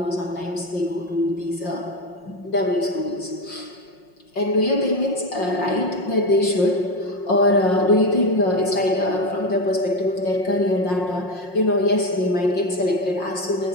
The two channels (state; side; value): late; right; 5.6 ms